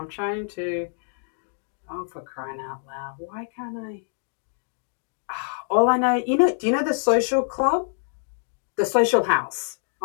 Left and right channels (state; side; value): silent; right; digital silence